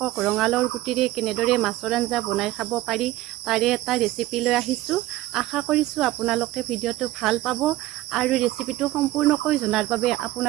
ৰঙালাওৰ গুটিৰে কেনেদৰে মাছৰ আঞ্জা বনাই খাব পাৰি তাৰে এটা ৰেচিপি লৈ আহিছোঁ। আশা কৰিছোঁ আপোনালোকে ভিডিঅ'টো ভাল পাব আৰু ৰেচিপিটো সম্পূৰ্ণকৈ জনাৰ বাবে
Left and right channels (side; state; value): left; quieter; 16.6 dB